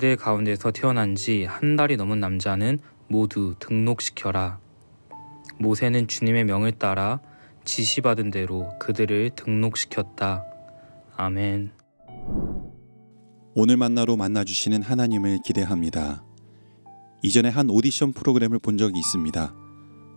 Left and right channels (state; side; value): inverted; both; correlation -1.00